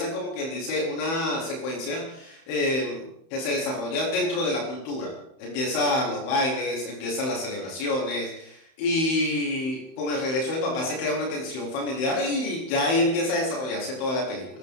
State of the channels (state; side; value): late; right; 31 ms